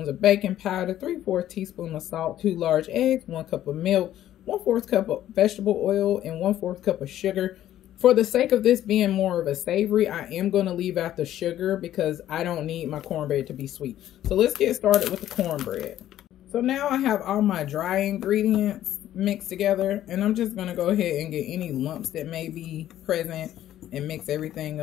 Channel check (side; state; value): right; quieter; 12.4 dB